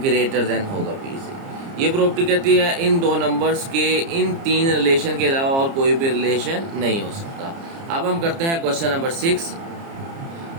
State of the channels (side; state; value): left; late; 30 ms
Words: देन होगा बी से। ये प्रॉपर्टी कहती है इन दो नंबर्स के इन तीन रिलेशन के अलावा और कोई भी रिलेशन नहीं हो सकता। अब हम करते हैं क्वेश्चन नंबर 6।